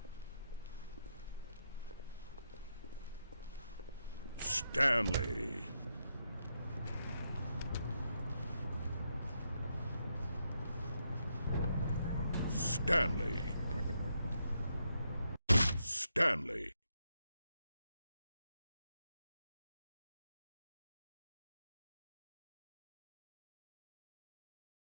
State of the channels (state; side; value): inverted; both; correlation -0.82